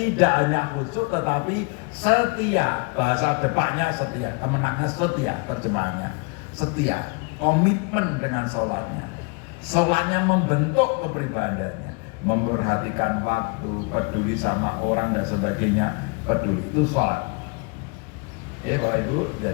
hanya khusyuk tetapi setia. Bahasa depaknya setia, kemenangnya setia, terjemahannya setia, komitmen dengan sholatnya. Sholatnya membentuk kepribadiannya, memperhatikan waktu, peduli sama orang dan sebagainya, peduli itu sholat. Ya Pak Ibu,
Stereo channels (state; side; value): quieter; right; 32.2 dB